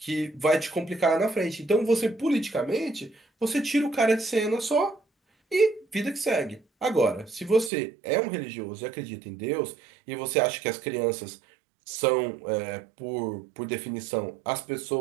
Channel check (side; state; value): left; drops out; at 7.7 s